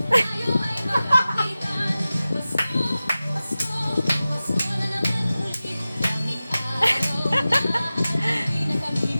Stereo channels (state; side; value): inverted; both; correlation -0.96